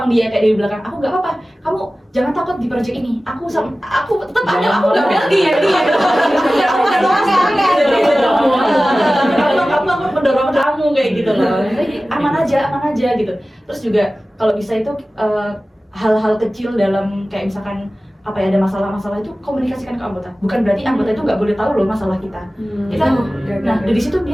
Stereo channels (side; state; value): both; normal; correlation 0.96